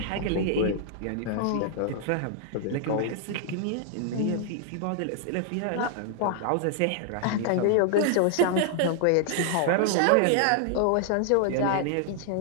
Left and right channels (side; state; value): both; different; correlation 0.00